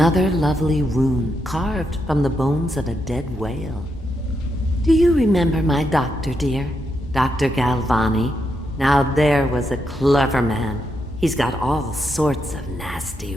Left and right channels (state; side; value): normal; both; correlation 0.82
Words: lovely rune carved from the bones of a dead whale. Do you remember my doctor, dear? Dr. Galvani? Now there was a clever man. He's got all sorts of